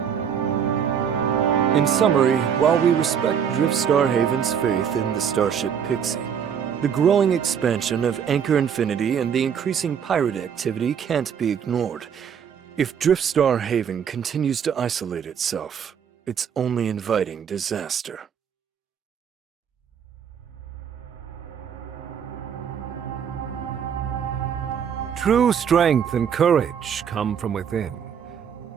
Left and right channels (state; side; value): quieter; left; 7.8 dB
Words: In summary, while we respect Driftstar Haven's faith in the starship Pixie, the growing expansion of Anchor Infinity and the increasing pirate activity can't be ignored. If Driftstar Haven continues to isolate itself, it's only inviting disaster. True strength and courage come from within.